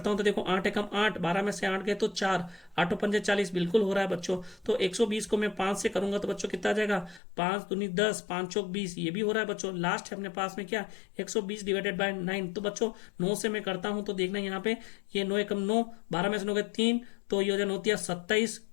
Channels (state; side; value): drops out; right; at 7.2 s